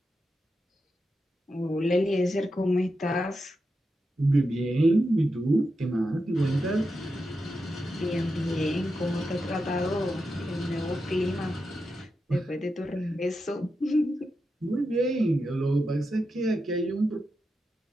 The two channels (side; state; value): both; normal; correlation 0.88